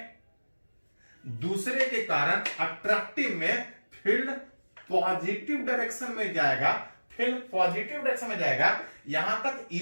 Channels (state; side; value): inverted; both; correlation -1.00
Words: में फील्ड पॉजिटिव डायरेक्शन में जाएगा, फील्ड पॉजिटिव डायरेक्शन में जाएगा। यहां तक